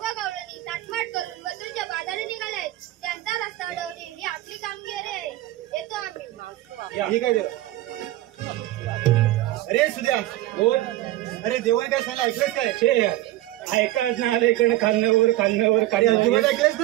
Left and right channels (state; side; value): quieter; left; 15.9 dB